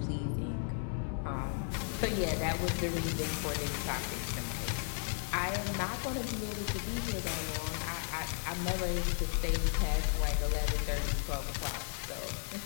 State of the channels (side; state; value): right; silent; 55 dB below the other